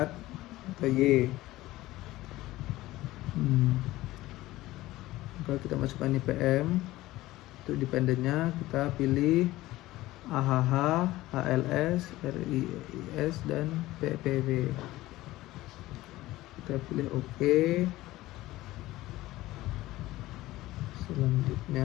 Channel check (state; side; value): quieter; right; 17.2 dB